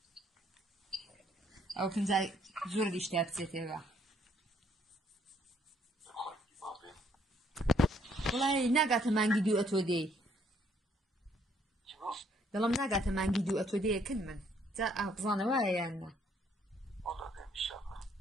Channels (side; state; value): both; normal; correlation 0.67